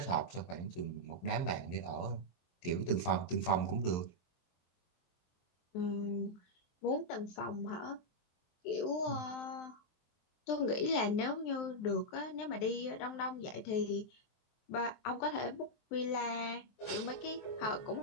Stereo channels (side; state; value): right; late; 23 ms